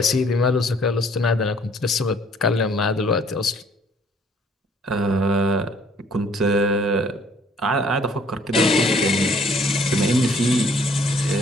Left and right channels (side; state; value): both; normal; correlation 0.60